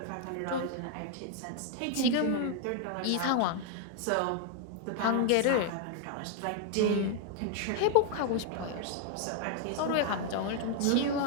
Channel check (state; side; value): different; both; correlation 0.00